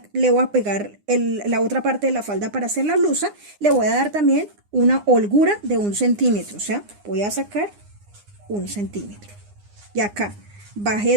le voy a pegar la otra parte de la falda para hacer la blusa, le voy a dar también una holgura de 1 centímetro. O sea, voy a sacar 1 centímetro. Y acá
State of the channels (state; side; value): late; left; 9.8 ms